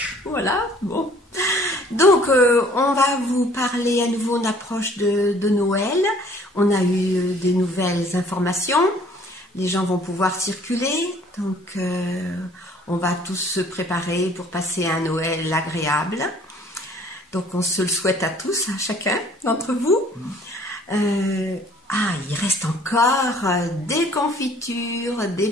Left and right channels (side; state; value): both; normal; correlation 0.56